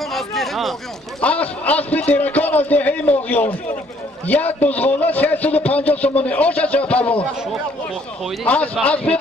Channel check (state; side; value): normal; both; correlation 0.63